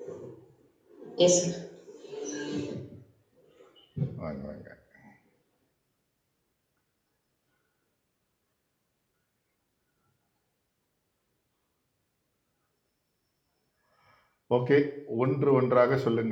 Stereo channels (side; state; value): both; identical; correlation 1.00